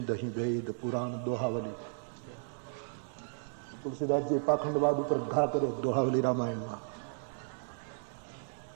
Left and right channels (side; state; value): left; silent; 55 dB below the other